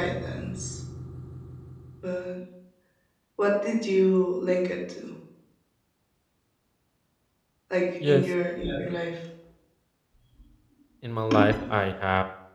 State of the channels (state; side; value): identical; both; correlation 1.00